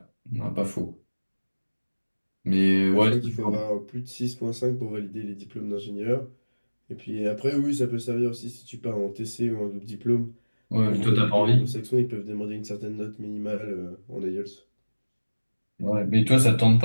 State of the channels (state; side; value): inverted; both; correlation -1.00